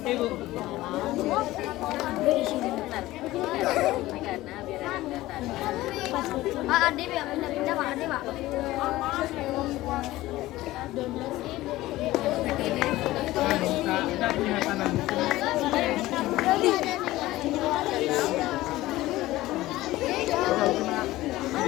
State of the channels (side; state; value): right; quieter; 17.1 dB